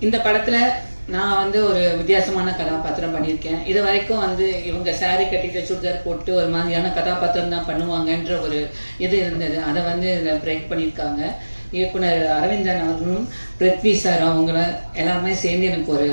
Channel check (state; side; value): inverted; both; correlation -1.00